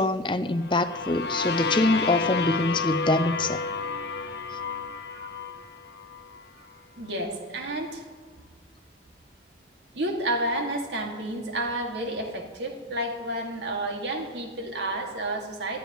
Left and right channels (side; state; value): both; normal; correlation 0.26